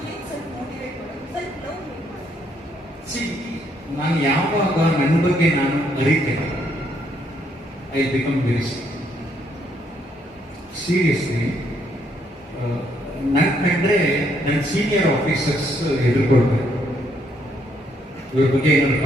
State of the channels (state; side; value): normal; both; correlation 0.72